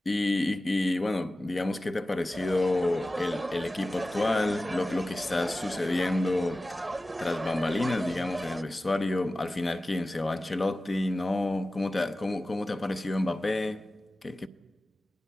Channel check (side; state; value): both; normal; correlation 0.96